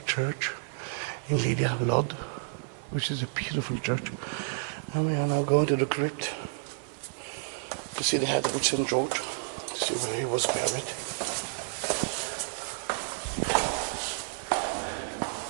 Church in Lydda, Lod, which is a beautiful church. And we are now going to the crypt to see the head of St. George, to see where he was buried.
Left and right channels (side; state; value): left; silent; 58 dB below the other